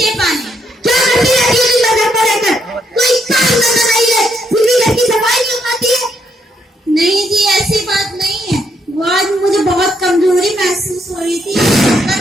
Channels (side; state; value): both; normal; correlation 0.75